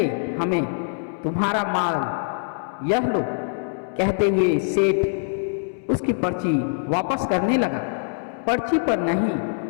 हमें तुम्हारा माल, यह लो। कहते हुए सेठ उसकी पर्ची वापस करने लगा। पर्ची पर नहीं,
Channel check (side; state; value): right; silent; 63 dB below the other